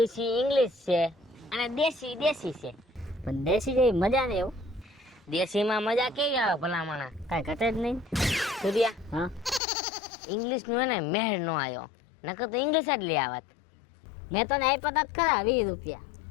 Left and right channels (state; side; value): drops out; right; at 9.6 s